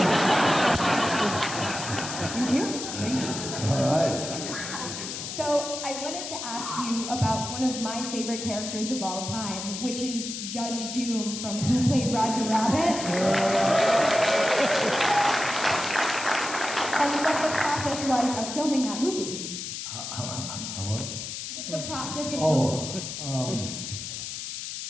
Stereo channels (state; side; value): noise; left; hiss, 7 dB below the sound